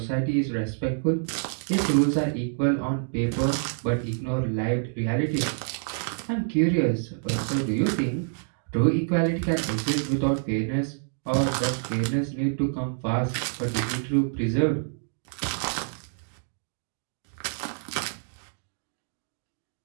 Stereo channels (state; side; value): silent; left; digital silence